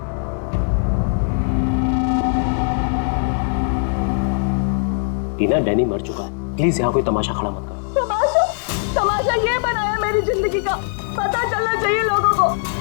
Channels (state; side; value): silent; right; digital silence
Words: टीना, डैनी मर चुका है। प्लीज यहाँ कोई तमाशा खड़ा मत करो। तमाशा ये बनाया मेरी जिंदगी का, पता चलना चाहिए लोगों को।